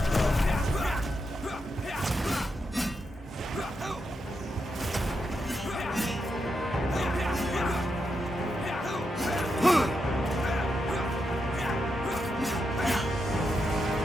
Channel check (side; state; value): both; normal; correlation 0.84